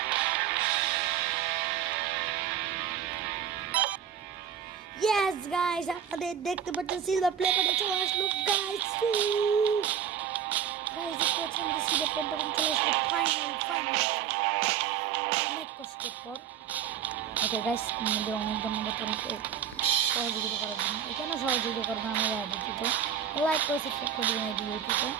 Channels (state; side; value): quieter; left; 8.8 dB